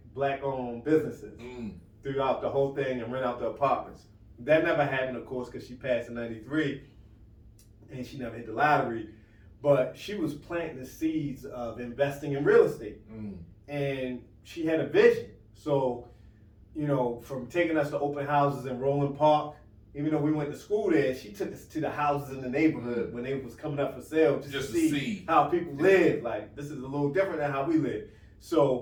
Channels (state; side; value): identical; both; correlation 1.00